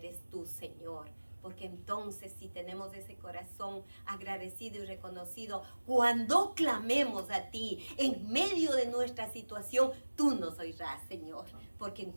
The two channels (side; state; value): both; inverted; correlation -1.00